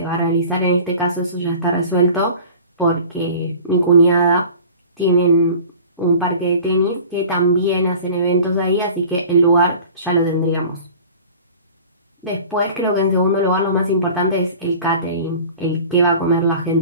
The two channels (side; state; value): both; inverted; correlation -0.43